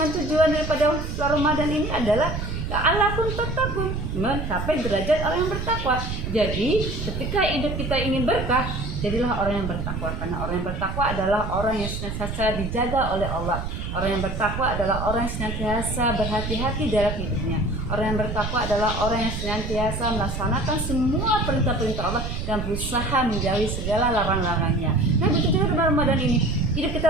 tujuan daripada bulan Ramadan ini adalah la'allakum tattaqun, mencapai derajat orang yang bertakwa. Jadi ketika hidup kita ingin berkah, jadilah orang yang bertakwa. Karena orang yang bertakwa adalah orang yang senantiasa dijaga oleh Allah. Orang yang bertakwa adalah orang yang senantiasa berhati-hati dalam hidupnya. Orang yang bertakwa adalah orang yang senantiasa melaksanakan semua perintah-perintah Allah dan berusaha menjauhi segala larang-larangnya. Nah begitu juga di Ramadan ini, hidup kita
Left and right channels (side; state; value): right; noise; rumble, 4 dB below the sound